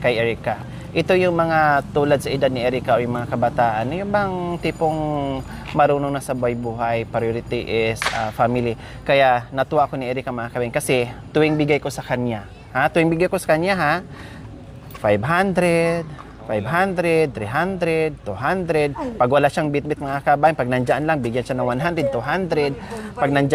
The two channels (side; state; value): both; identical; correlation 1.00